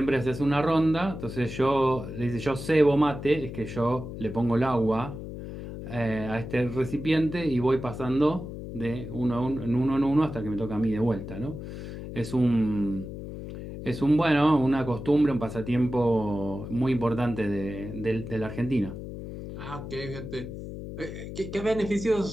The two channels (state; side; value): noise; left; hum, 9 dB below the sound